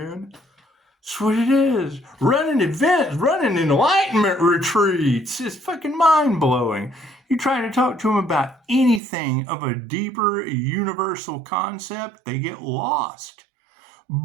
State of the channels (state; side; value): drops out; left; at 9.0 s